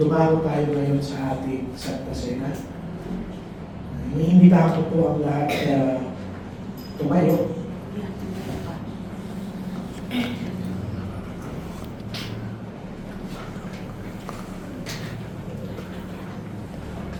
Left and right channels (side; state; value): both; identical; correlation 1.00